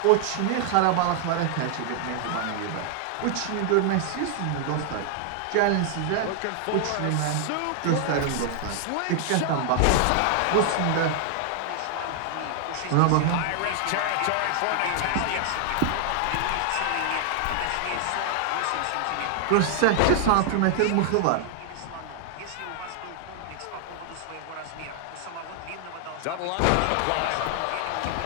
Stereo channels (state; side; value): different; both; correlation 0.00